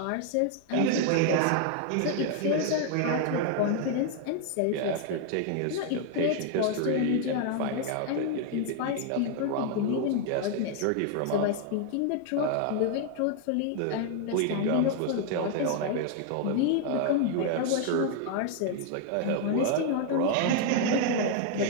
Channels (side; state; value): both; different; correlation 0.00